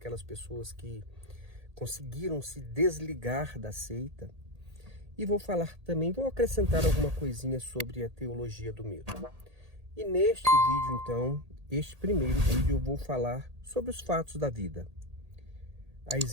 pessoas que conseguiram se desligar da seita. E vou falar também, vou acrescentar alguma coisinha sobre a teologia do medo. E neste vídeo, então, este primeiro vídeo, eu vou falar sobre os fatos da vida. A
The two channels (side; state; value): left; late; 1.8 ms